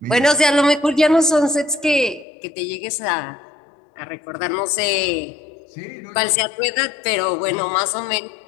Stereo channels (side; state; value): right; drops out; at 2.2 s